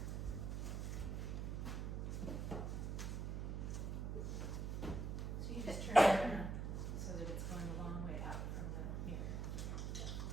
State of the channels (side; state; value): right; noise; hum, 2 dB below the sound